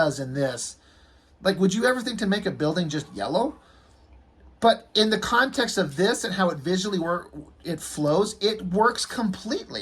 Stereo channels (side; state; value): both; identical; correlation 1.00